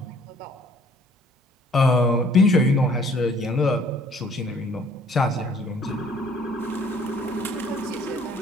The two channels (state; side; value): normal; both; correlation 0.58